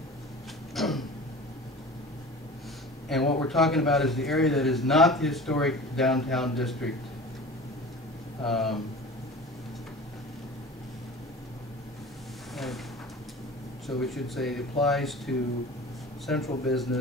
And what we're talking about is the area that is not the historic downtown district. So we should say it applies to central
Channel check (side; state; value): both; normal; correlation 0.38